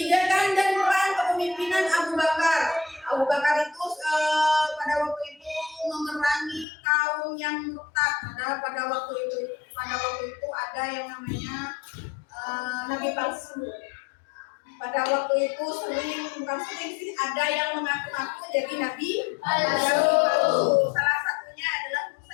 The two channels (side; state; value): right; drops out; at 6.7 s